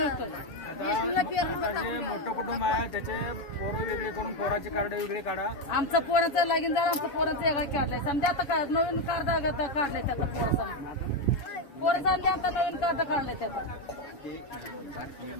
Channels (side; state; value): right; late; 7.3 ms